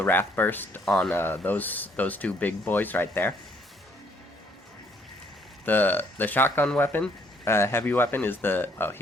Wrath Burst on those two big boys right there. The shotgun weapon, heavy weapon is the... Oh,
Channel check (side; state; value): both; normal; correlation 0.66